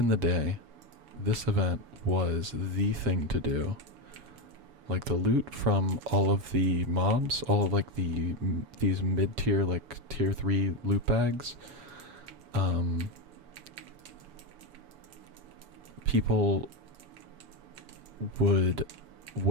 the day, this event was the thing to do. Like the loot from all of the mobs, all of like these mid-tier, like tier 3 loot bags, people would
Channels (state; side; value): late; left; 7.0 ms